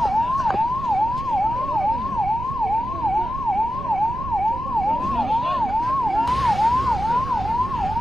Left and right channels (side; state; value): right; noise; rumble, 9 dB below the sound